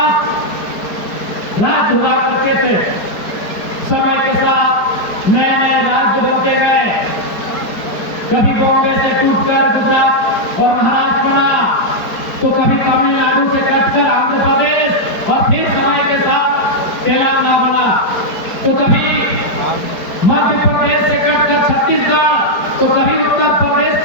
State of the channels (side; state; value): right; late; 4.7 ms